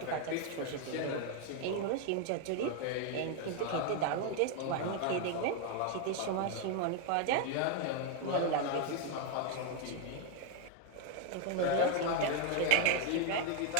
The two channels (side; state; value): both; different; correlation 0.00